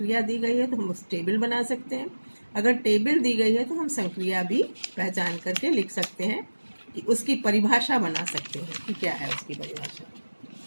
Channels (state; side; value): inverted; both; correlation -1.00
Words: दी गई है तो हम उस टेबल बना सकते हैं। अगर टेबल दी गई है तो हम संक्रिया भी पहचान करके लिख सकते हैं, कि उसकी परिभाषा बना सकते हैं कि क्या है उसकी परिभाषा।